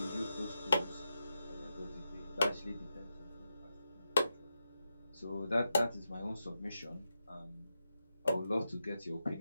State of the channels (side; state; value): both; inverted; correlation -0.88